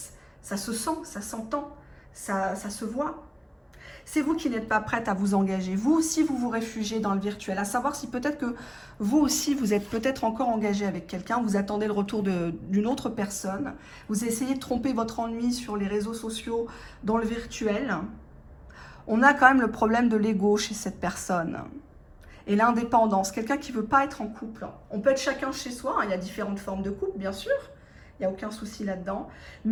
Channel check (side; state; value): both; identical; correlation 1.00